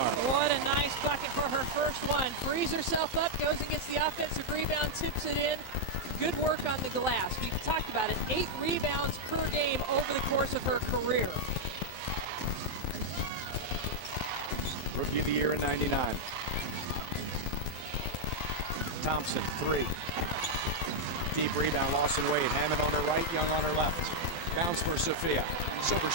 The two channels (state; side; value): late; right; 11 ms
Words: What a nice bucket for her first one. Frees herself up, goes and gets the offensive rebound, tips it in. Good work on the glass. We've talked about it. 8 rebounds per game over the course of her career. Rookie of the year in '99. Thompson, 3. Deep rebound, Lawson Wade. Hammond on her right, Young on her left. Bounce for Sophia. Silver